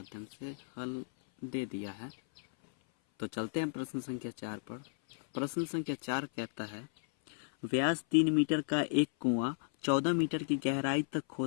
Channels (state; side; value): silent; right; 55 dB below the other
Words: से हल दे दिया है। तो चलते हैं प्रश्न संख्या 4 पर। प्रश्न संख्या 4 कहता है, व्यास 3 मीटर का एक कुआं 14 मीटर की गहराई तक